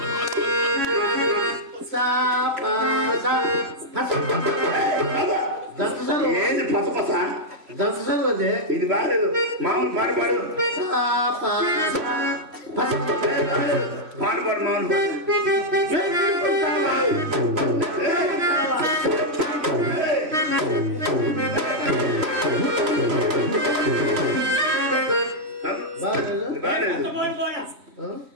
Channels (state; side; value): late; left; 3.1 ms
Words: సా పా సా ఏంది పసపస దంతసలు అదే ఇది బాగాలేదు. మామూలు పాడు పాడు సా పా పాడు పాడు మామూలు పాడు.